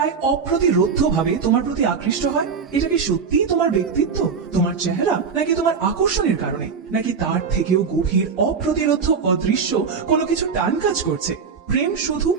অপ্রতিরোধ্য ভাবে তোমার প্রতি আকৃষ্ট হয়? এটা কি সত্যিই তোমার ব্যক্তিত্ব, তোমার চেহারা, নাকি তোমার আকর্ষণের কারণে, নাকি তার থেকেও গভীর অপ্রতিরোধ্য অদৃশ্য কোনো কিছু টান কাজ করছে? প্রেম শুধু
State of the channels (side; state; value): left; quieter; 5.8 dB